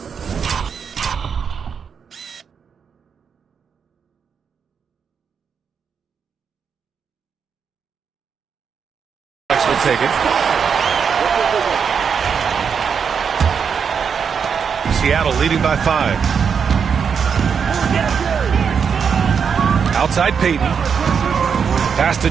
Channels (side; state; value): left; quieter; 6.6 dB